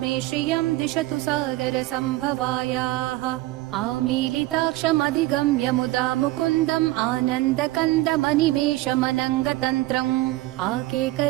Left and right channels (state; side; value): quieter; left; 18.3 dB